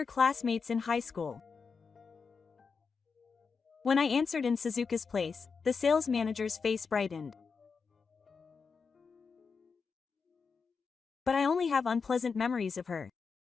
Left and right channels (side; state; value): right; quieter; 5.3 dB